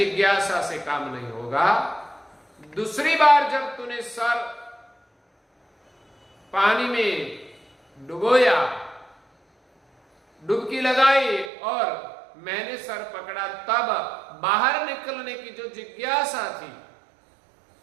से काम नहीं होगा। दूसरी बार जब तूने सर पानी में डुबोया, डुबकी लगाई और मैंने सर पकड़ा, तब बाहर निकलने की जो जिज्ञासा थी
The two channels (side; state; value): left; drops out; at 11.5 s